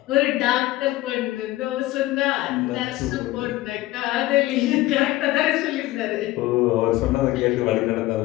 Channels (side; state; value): right; quieter; 17.2 dB